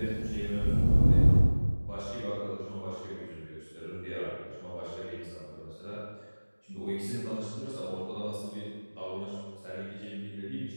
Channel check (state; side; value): inverted; both; correlation -1.00